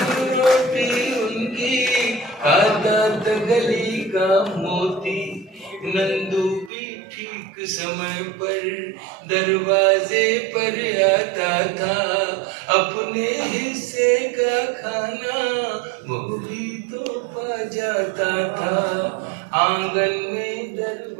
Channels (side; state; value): left; drops out; at 6.7 s